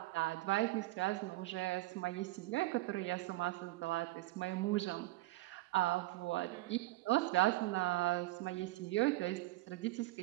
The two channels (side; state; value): left; quieter; 19.0 dB